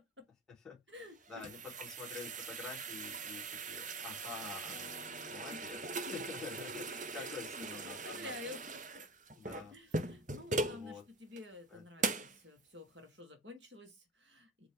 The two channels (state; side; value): normal; both; correlation 0.31